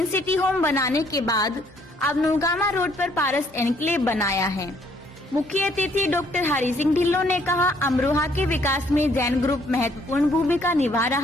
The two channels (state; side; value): normal; both; correlation 0.65